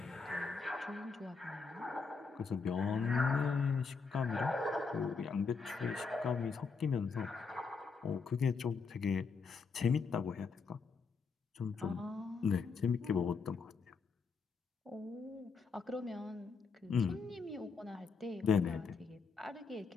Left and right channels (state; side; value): quieter; right; 5.0 dB